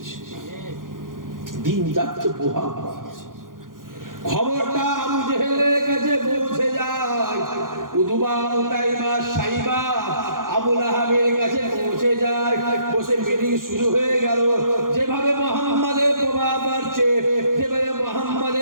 দিন যাচ্ছে প্রভাব। খবরটা আবু জেহেলের কাছে পৌঁছে যায়, উতবা উতাইবা সাইবা আবু লাহাবের কাছে পৌঁছে যায়। বসে মিটিং শুরু হয়ে গেল। যেভাবে মুহাম্মাদের প্রভাব বাড়ছে, যেভাবে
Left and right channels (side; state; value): left; late; 0.90 ms